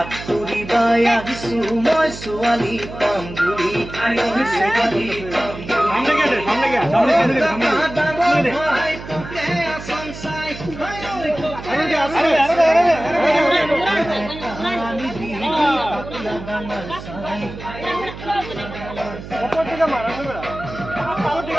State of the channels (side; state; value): right; noise; hum, 12 dB below the sound